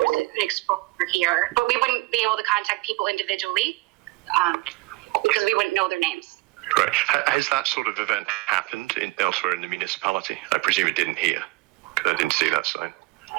was an exposure here, but we wouldn't be able to contact people individually because we wouldn't know their names. Right. Has that sort of event happened elsewhere in the municipality? I presume it didn't here. I didn't see that sign.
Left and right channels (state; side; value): quieter; left; 22.3 dB